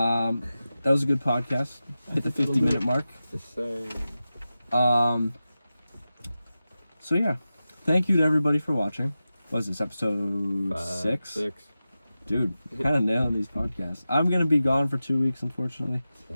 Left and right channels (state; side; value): inverted; both; correlation -0.94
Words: was a good podcast. Hit the 50-minute mark. Just saying. So yeah, thank you to everybody for watching. What was this, episode 6? 6. Dude, kind of nailing these podcasts. I'm gonna be gone for 2 weeks, unfortunately.